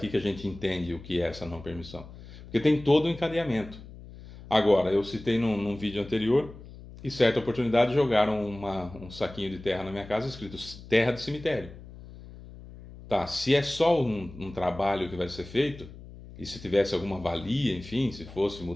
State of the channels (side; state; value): left; noise; hum, 16 dB below the sound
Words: que a gente entende o que é essa não permissão. Porque tem todo o encadeamento. Agora, eu citei num vídeo anterior, e certa oportunidade jogaram um saquinho de terra na minha casa escrito terra de cemitério. Tá, se é só um trabalho que vai ser feito, e se tivesse alguma valia, enfim, se fosse